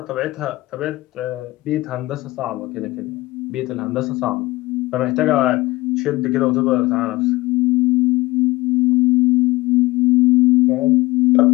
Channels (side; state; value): right; quieter; 19.8 dB